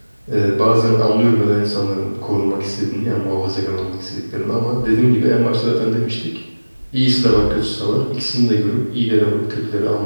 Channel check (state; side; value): inverted; both; correlation -1.00